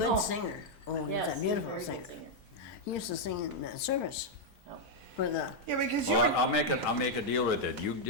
Oh. singer. Oh, he's Yes, a beautiful very good singer. singer. He used to sing in the service Oh. for the, Yeah, because Well, you're, I'll make a deal with it. You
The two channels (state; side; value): normal; both; correlation -0.02